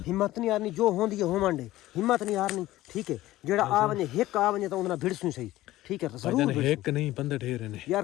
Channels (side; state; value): right; quieter; 16.1 dB